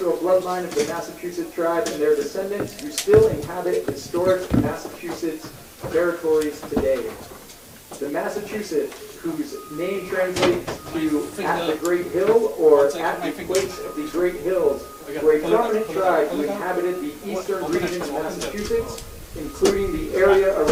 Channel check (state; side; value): identical; both; correlation 1.00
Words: bloodline of the Massachusetts tribe and their descendants who still inhabit historic Massachusetts territories today. The Massachusetts, whose name translates to at the Great Hill or at the place of the Great Hills, were a prominent tribe who inhabited the eastern region of Massachusetts, including the area